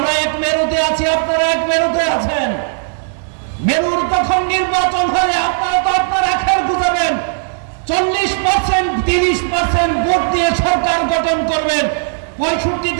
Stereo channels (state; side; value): silent; left; 59 dB below the other